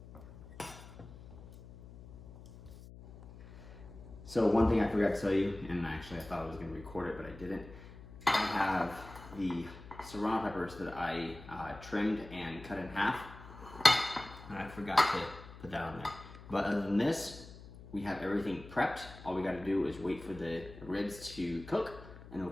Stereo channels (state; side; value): noise; left; hum, 16 dB below the sound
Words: So one thing I forgot to tell you, and actually I thought I was going to record it, but I didn't. I have the Serrano peppers that I trimmed and cut in half, and I forgot to put that on there. But other than this, we have everything prepped. All we got to do is wait for the ribs to cook, and then